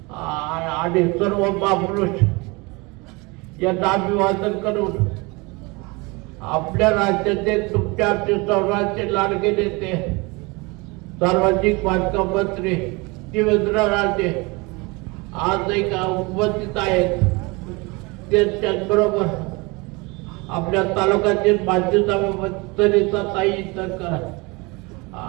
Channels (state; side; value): quieter; left; 26.4 dB